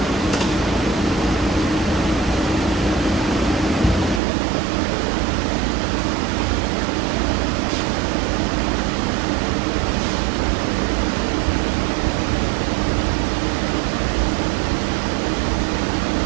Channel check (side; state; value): left; drops out; at 4.2 s